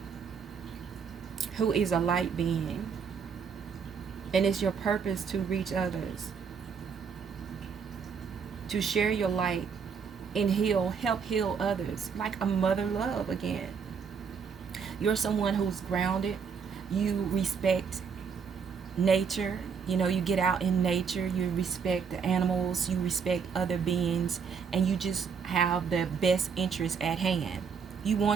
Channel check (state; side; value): quieter; left; 6.3 dB